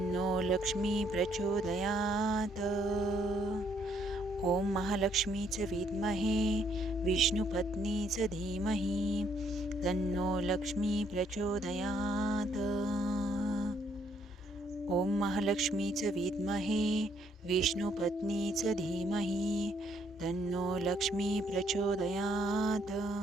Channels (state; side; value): normal; both; correlation 0.69